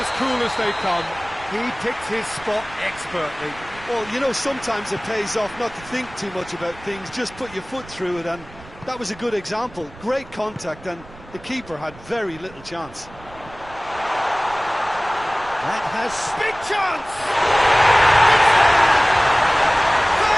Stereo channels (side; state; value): right; noise; rumble, 20 dB below the sound